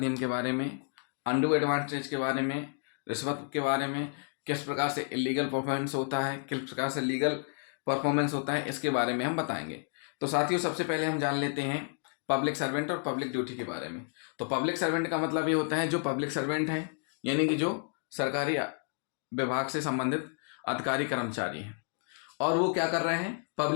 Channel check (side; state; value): right; silent; 55 dB below the other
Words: के बारे में, अनडू एडवांटेज के बारे में, रिश्वत के बारे में, किस प्रकार से इलीगल परफॉर्मेंस होता है, किस प्रकार से लीगल परफॉर्मेंस होता है, इसके बारे में हम बताएंगे। तो साथियों, सबसे पहले हम जान लेते हैं पब्लिक सर्वेंट और पब्लिक ड्यूटी के बारे में। तो पब्लिक सर्वेंट का मतलब ये होता है जो पब्लिक सर्वेंट हैं, यानी कि जो सरकारी विभाग से संबंधित अधिकारी कर्मचारी हैं और वो क्या कर रहे हैं,